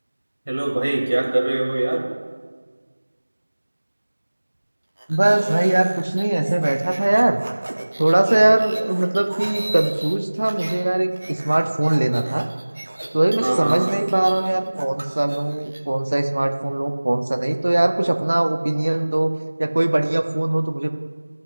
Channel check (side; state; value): both; inverted; correlation -1.00